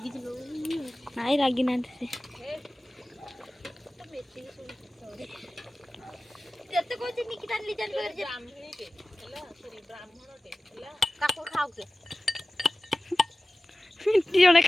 ନାଇଁ ରାଗି ନାହାନ୍ତି ସେ ଯେତେ କହୁଛି ନିକିତା ଲିଜାନ ପାଖରେ ବ୍ରାହ୍ମଣଟେ ହେଲା ସରି ବ୍ରାହ୍ମଣଟେ ହେଲା କାକୁ ଖାଉ କେ ଜଣେ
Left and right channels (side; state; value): both; normal; correlation 0.97